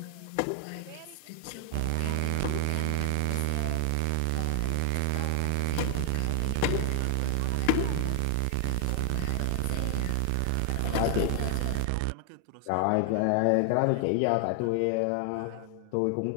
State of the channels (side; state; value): both; different; correlation 0.00